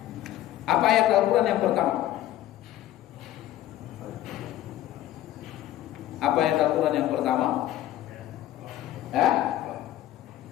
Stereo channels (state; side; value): quieter; right; 13.4 dB